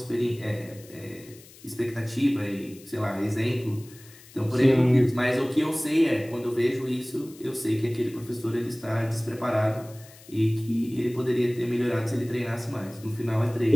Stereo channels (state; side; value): noise; left; hiss, 22 dB below the sound